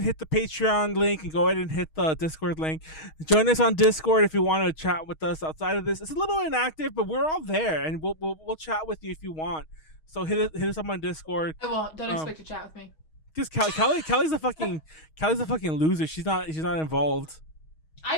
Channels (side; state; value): right; late; 6.4 ms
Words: hit the Patreon link and go ahead and hit the Discord link. Join us on Discord if you want to chat with us outside of this. It's a little inactive, but we're all there, and we'll chat with you if you want. So hit us up on Discord. I won't. Don't expect to chat with me. Because Callie's a fucking loser. She's not involved.